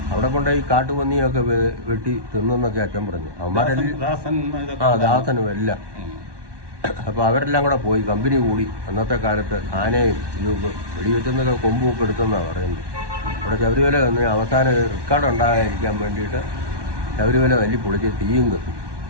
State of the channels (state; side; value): late; left; 1.2 ms